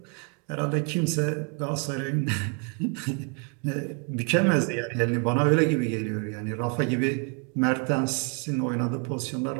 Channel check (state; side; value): quieter; left; 37.8 dB